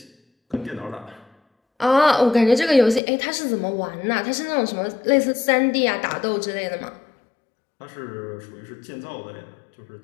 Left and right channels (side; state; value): right; drops out; at 3.0 s